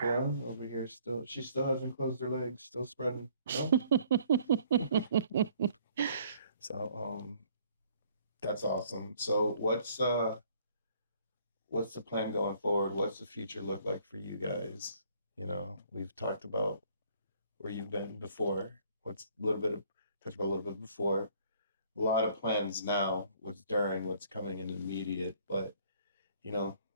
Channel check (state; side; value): inverted; both; correlation -0.60